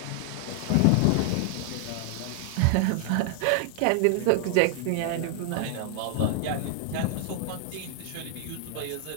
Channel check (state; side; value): different; both; correlation 0.00